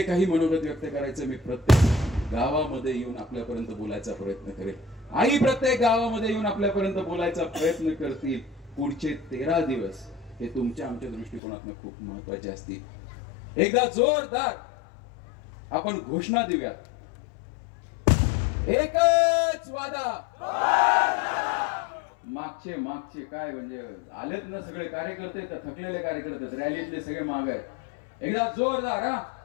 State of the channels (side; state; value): right; drops out; at 11.4 s